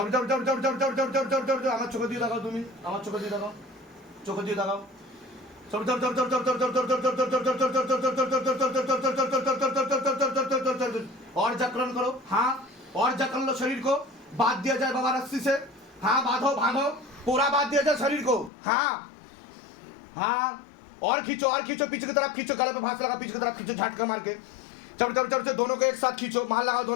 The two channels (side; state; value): right; drops out; at 18.5 s